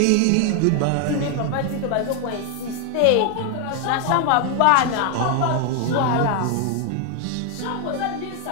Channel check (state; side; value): different; both; correlation 0.00